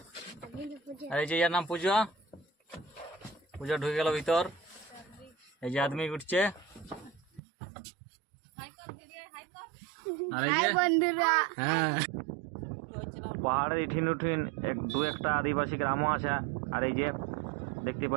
আর এই যে ইয়ার নাম পূজা, পূজা ঢুকে গেল ভিতর। এই যে আদমি উঠছে, আর এই যে হ্যাঁ পাহাড়ের ইঠিন উঠিন দু একটা আদিবাসী গ্রামও আছে। আর এই যে দেখতে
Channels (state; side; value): drops out; left; at 7.4 s